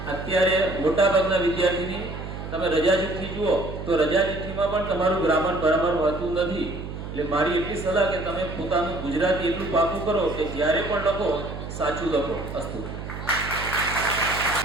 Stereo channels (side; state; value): right; noise; hum, 8 dB below the sound